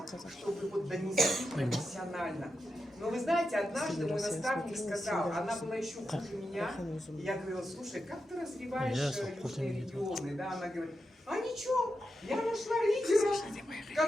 чтобы вот донести профессионально. Но вы знаете, однажды мой наставник сказал, она была еще хуже меня, и я говорила, слушай, как ты развиваешь южные регионы? Да, она говорит, а ничего, я нашла лидера,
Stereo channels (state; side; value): normal; both; correlation 0.88